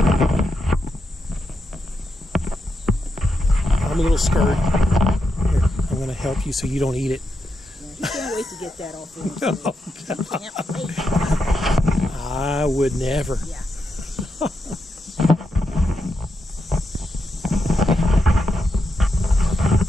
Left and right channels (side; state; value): both; normal; correlation 0.85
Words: I'm a little scared. Here, I'm going to help you so you don't eat it. Yeah, he can't wait to get that off him. Oh, He can't wait. I would never. Yeah.